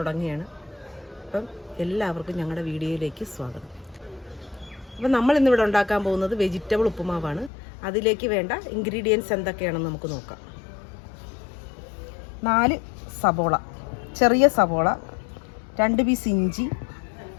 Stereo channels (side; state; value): right; drops out; at 7.5 s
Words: അപ്പം എല്ലാവർക്കും ഞങ്ങളുടെ വീഡിയോയിലേക്ക് സ്വാഗതം. അപ്പം നമ്മൾ ഇന്നിവിടെ ഉണ്ടാക്കാൻ പോകുന്നത് വെജിറ്റബിൾ ഉപ്പുമാവാണ്. അതിലേക്ക് വേണ്ട ഇൻഗ്രീഡിയൻസ് എന്തൊക്കെയാണെന്ന് നമുക്ക് നോക്കാം. 4 സബോള, ചെറിയ സബോള, 2 പീസ് ഇഞ്ചി,